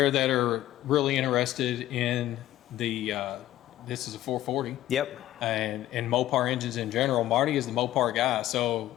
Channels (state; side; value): quieter; right; 14.0 dB